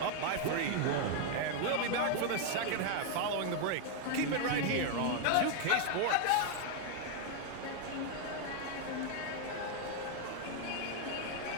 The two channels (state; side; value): different; both; correlation 0.00